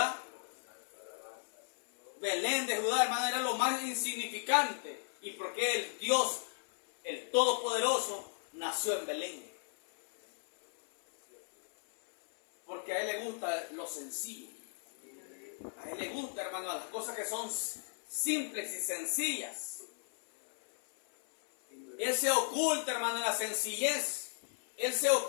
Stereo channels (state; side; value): silent; right; 54 dB below the other